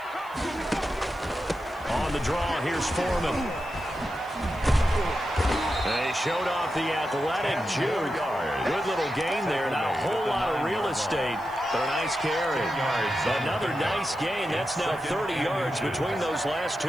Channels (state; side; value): noise; left; hiss, 26 dB below the sound